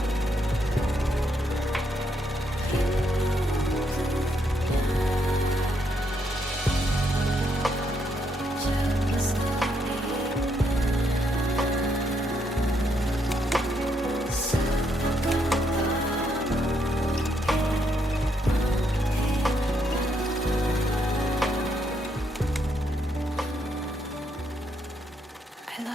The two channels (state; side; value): normal; both; correlation 0.75